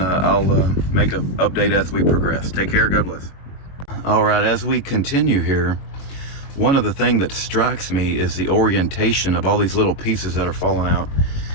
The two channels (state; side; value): late; right; 22 ms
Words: make an update as we progress. Take care. God bless. All right, as we continue here, one of the things that strikes me is the orientation of all these little pieces that are falling out.